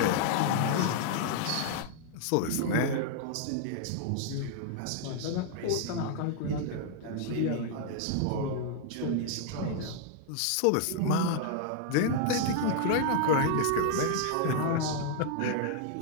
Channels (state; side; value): different; both; correlation 0.00